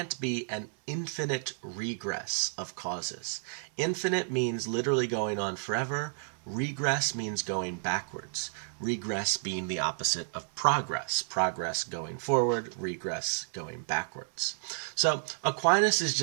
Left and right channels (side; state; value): left; silent; 57 dB below the other